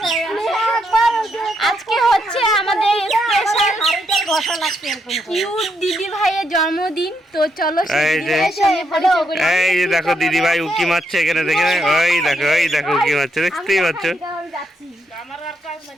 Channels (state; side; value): normal; both; correlation 0.78